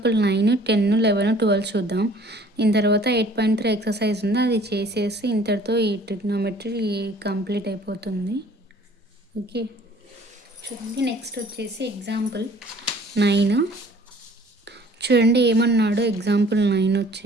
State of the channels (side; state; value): both; normal; correlation 0.53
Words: 9, 10, 11, 12 చూద్దాం. దీని తర్వాత 8.3 ఎక్సర్సైజ్ ఉంది, అది చేసేసి ఇంతటితో ఈ ట్రిగ్నోమెట్రీ కంప్లీట్ అయిపోతుంది. ఓకే, చూడండి. నెక్స్ట్ వచ్చేసి ఎగ్జాంపుల్ 9 చూడండి. ఏమన్నాడు ఎగ్జాంపుల్ 9